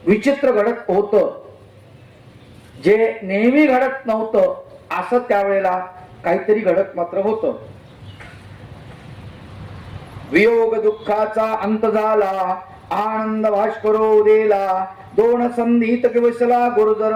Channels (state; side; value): identical; both; correlation 1.00